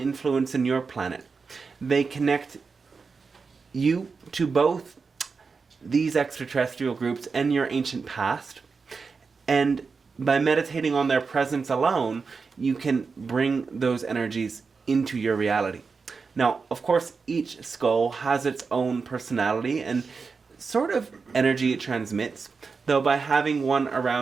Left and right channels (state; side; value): quieter; left; 4.9 dB